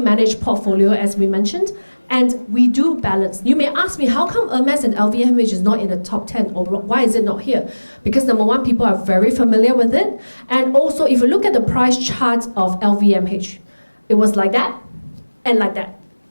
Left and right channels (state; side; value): inverted; both; correlation -1.00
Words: portfolio, as we mentioned, and we do balance. You may ask me, how come Hermes and LVMH is not in the top 10, or why is it not here? Because number one, people are very familiar with it, and also if you look at the price chart of LVMH, it was like that and like that.